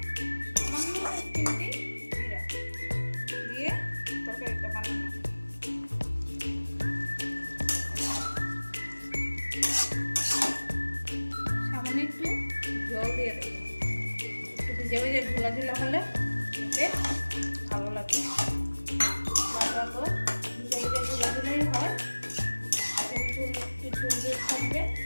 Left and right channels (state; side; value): inverted; both; correlation -1.00